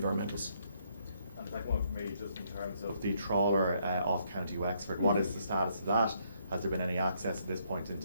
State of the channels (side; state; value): both; inverted; correlation -0.71